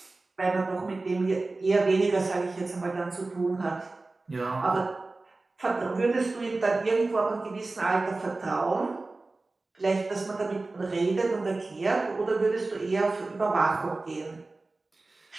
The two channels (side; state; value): left; quieter; 3.3 dB